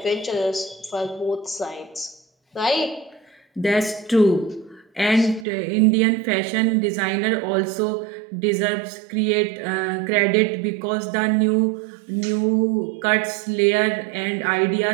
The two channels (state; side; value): drops out; left; at 5.5 s